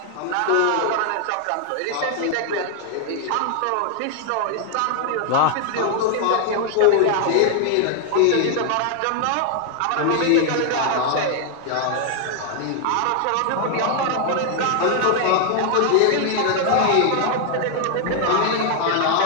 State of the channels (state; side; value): different; both; correlation 0.00